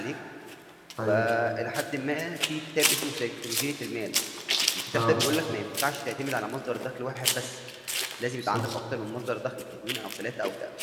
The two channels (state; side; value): identical; both; correlation 1.00